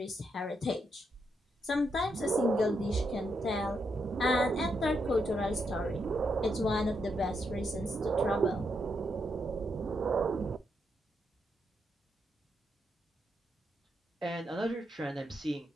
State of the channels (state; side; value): normal; both; correlation 0.80